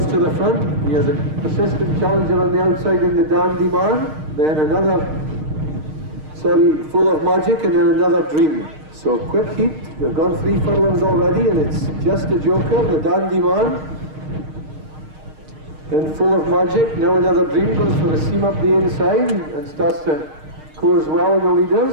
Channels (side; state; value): left; late; 6.5 ms